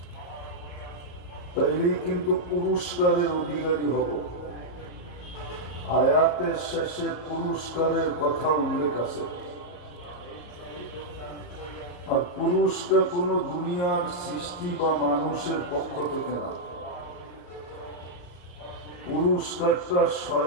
তাইলেই কিন্তু পুরস্কারের অধিকারী হব। আয়াতের শেষে পুরস্কারের কথা উল্লেখ আছে, আর পুরুষটা কোনো দুনিয়ার সৃষ্টি বা মানুষের পক্ষ থেকে না, পুরস্কারটা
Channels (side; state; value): right; late; 33 ms